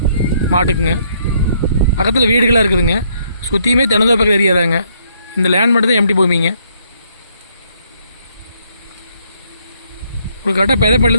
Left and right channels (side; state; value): both; inverted; correlation -0.69